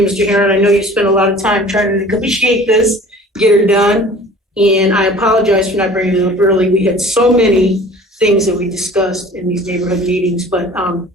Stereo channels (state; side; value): normal; both; correlation 0.46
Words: Mr. Heron. I know you spent a lot of time trying to negotiate this, get her done. And I apologize for not bringing it up early. We had so many things that we discussed in these neighborhood meetings, but